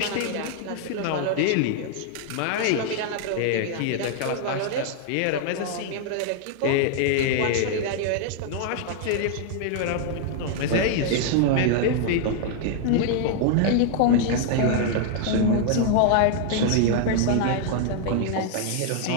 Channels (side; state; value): both; different; correlation 0.00